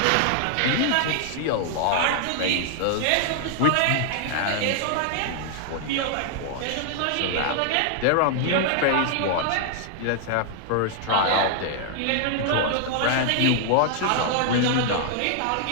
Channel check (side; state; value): both; different; correlation 0.00